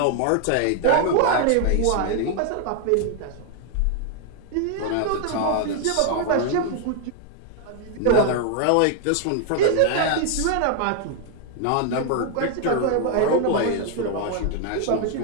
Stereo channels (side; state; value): both; different; correlation 0.00